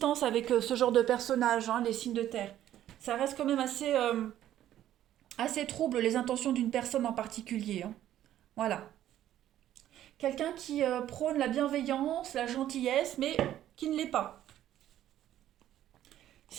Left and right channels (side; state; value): left; quieter; 12.2 dB